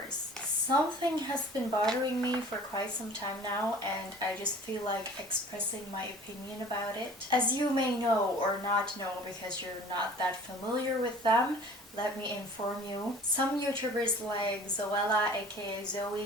Something has been bothering me for quite some time now, and I just feel like expressing my opinion about it. As you may know or not know because you're not that familiar with them, let me inform you. Some YouTubers like Zoella aka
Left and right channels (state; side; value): normal; both; correlation 0.46